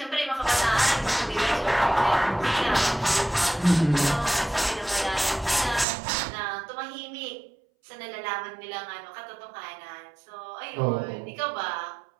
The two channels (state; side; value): drops out; left; at 5.9 s